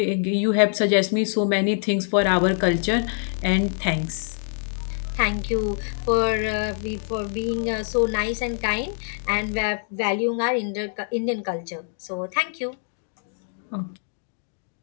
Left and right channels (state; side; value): silent; right; digital silence